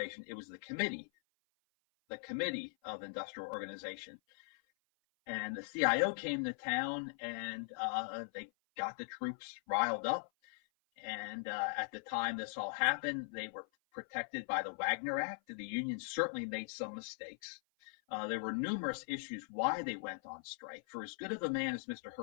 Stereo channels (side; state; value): right; silent; 51 dB below the other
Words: it was the Committee of Industrial Organization. And the CIO came to town, and they got the troops riled up. And at the time this all happened, they were protected by the Wagner Act. The unions certainly made some mistakes. There were numerous issues why they went on strike. For as good of a man as Mr.